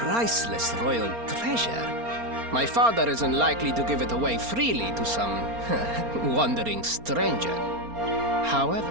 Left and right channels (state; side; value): late; left; 4.3 ms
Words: royal treasure. My father is unlikely to give it away freely to some wandering stranger.